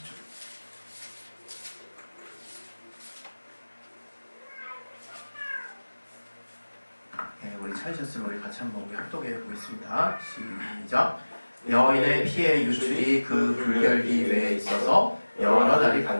네, 우리 찾으셨으면 우리 같이 한번 우리 합독해 보겠습니다. 시작. 여인의 피의 유출이 그 불결기 외에 있어서 여러 날이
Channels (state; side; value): inverted; both; correlation -1.00